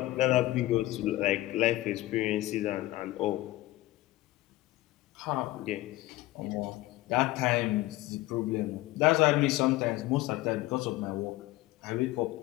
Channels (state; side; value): quieter; right; 17.8 dB